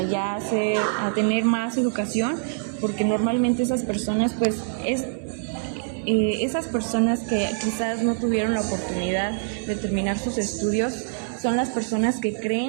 tener más educación, porque normalmente esas personas pues esas personas que quizás no tuvieron la oportunidad de terminar sus estudios son las personas que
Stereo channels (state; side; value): silent; left; digital silence